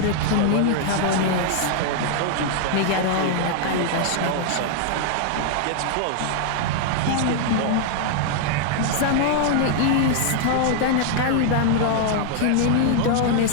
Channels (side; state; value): both; different; correlation 0.00